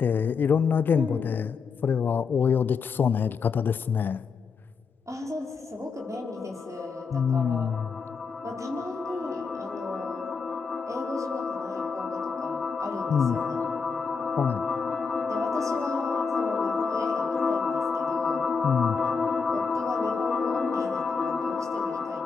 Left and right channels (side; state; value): right; quieter; 5.3 dB